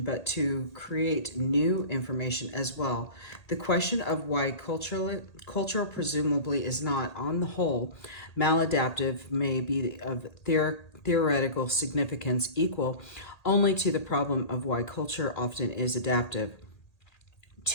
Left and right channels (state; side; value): late; right; 1.9 ms